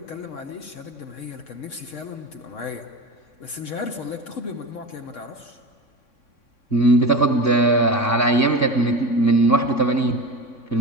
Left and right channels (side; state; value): right; late; 3.6 ms